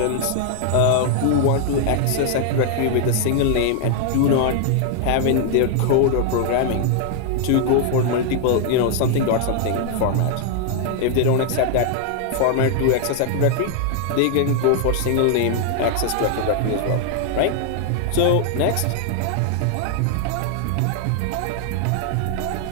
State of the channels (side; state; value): both; different; correlation 0.00